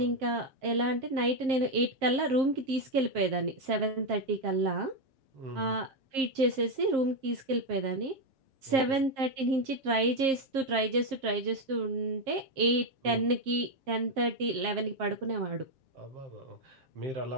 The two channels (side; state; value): left; late; 7.5 ms